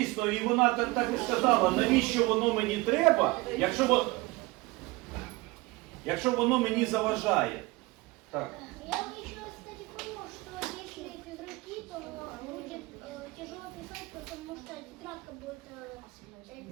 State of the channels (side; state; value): left; quieter; 22.3 dB